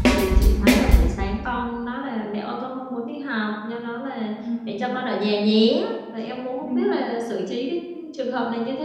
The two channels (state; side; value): identical; both; correlation 1.00